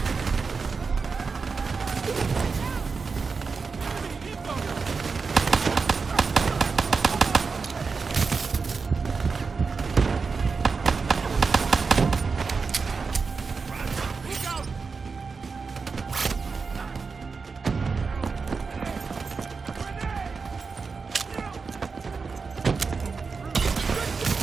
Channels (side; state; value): left; quieter; 4.8 dB